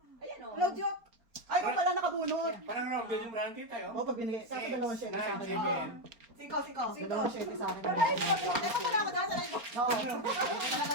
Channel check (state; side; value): late; left; 4.3 ms